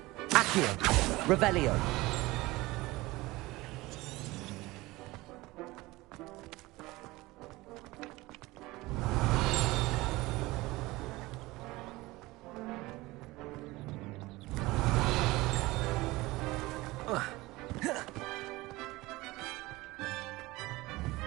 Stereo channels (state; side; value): quieter; left; 20.3 dB